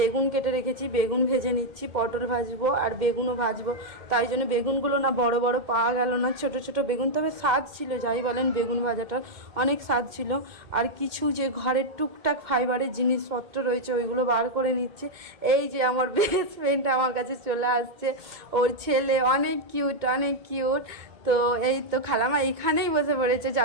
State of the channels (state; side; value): late; left; 2.2 ms